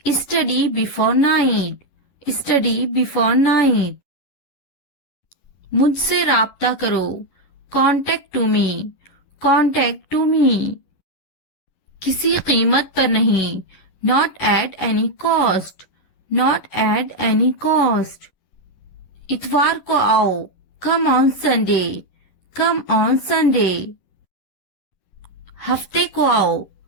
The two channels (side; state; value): right; late; 11 ms